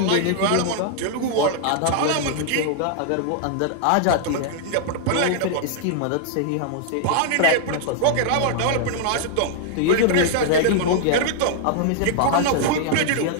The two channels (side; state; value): both; different; correlation -0.01